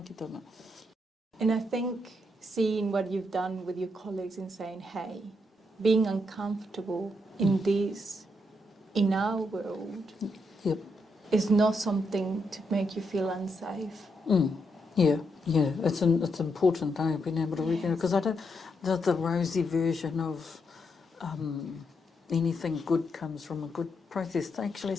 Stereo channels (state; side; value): normal; both; correlation 0.80